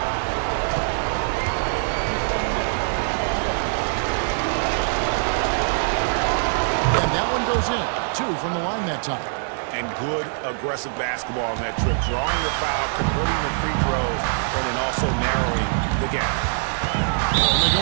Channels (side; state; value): left; silent; digital silence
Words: And that one goes in. 2 from the line that time. And good aggressive basketball on that trip. Drawing the foul, converting the free throws, and then also narrowing the gap. And they go